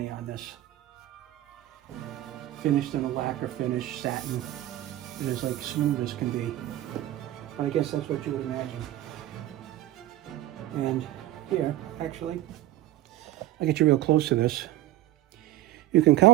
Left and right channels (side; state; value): left; quieter; 14.9 dB